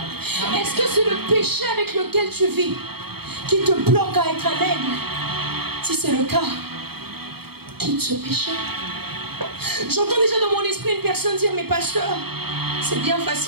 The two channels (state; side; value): late; left; 0.96 ms